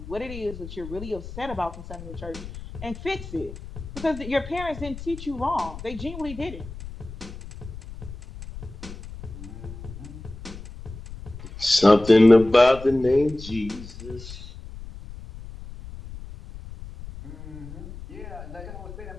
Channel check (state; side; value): noise; left; rumble, 13 dB below the sound